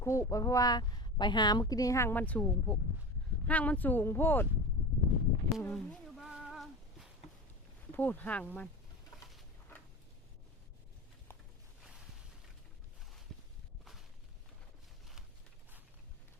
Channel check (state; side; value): normal; both; correlation 0.30